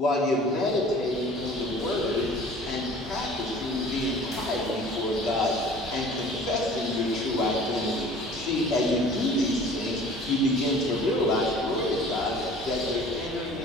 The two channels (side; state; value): both; normal; correlation 0.47